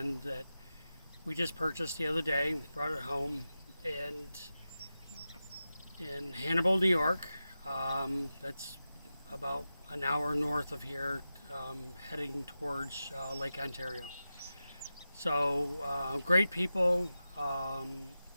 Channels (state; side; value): inverted; both; correlation -0.92